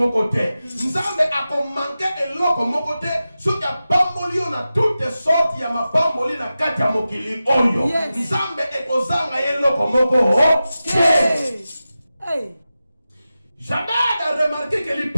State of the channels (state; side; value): inverted; both; correlation -0.93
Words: te. Nzambe ako manquer eloko moko te. Soki apamboli yo na toutes sortes ya mapamboli na kati ya mokili oyo. Yes. Nzambe ekozanga eloko moko te. Hey. Jamais de remarquer que